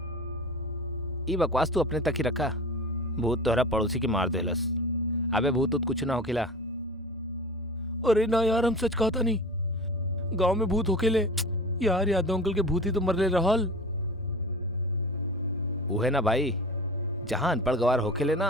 ई बकवास तू अपने तक ही रखा। भूत तोहरा पड़ोसी के मार देलस। अबे भूत उत कुछ ना होकेला। अरे ना यार, हम सच कहता नहीं। गांव में भूत होकेले यार, यादव अंकल के भूत ही तो मरले रहल। उहे ना भाई, जहां अनपढ़ गवार होकेले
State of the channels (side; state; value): both; normal; correlation 0.35